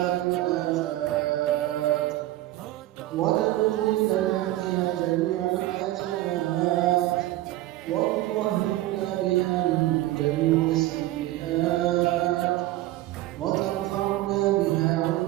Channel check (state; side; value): quieter; left; 16.2 dB